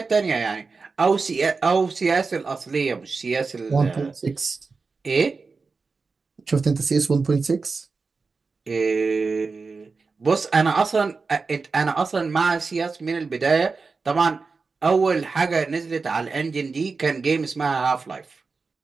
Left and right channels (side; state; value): left; quieter; 4.4 dB